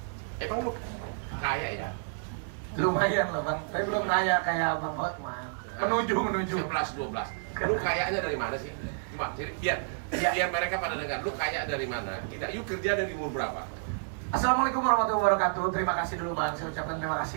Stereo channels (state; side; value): silent; left; digital silence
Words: Emang lu kaya ya? Lumayan lah bang, tapi belum kaya kayak Bang Hotman. Menuju. 11-12. Lu kayaknya dari mana sih? Coba, jadi biar mereka pada dengar. Lu kaya dari mana? Yuk kerja dari umur berapa? Assalamualaikum warahmatullahi wabarakatuh. Terima kasih dulu bang, saya ucapkan terima